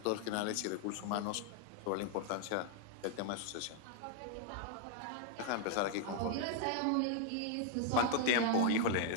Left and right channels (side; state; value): both; different; correlation 0.00